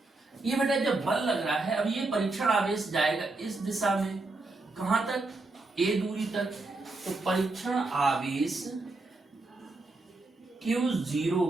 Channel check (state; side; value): quieter; left; 3.2 dB